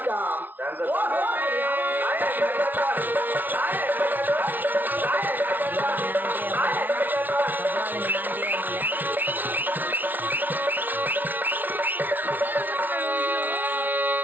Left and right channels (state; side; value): late; left; 0.085 ms